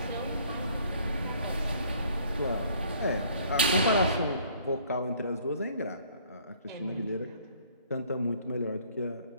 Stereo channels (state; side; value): inverted; both; correlation -0.58